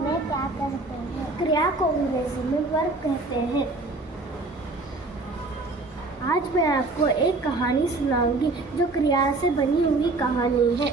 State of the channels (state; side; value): quieter; left; 3.3 dB